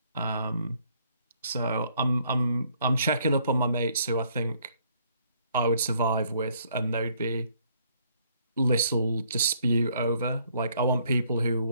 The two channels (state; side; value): inverted; both; correlation -0.66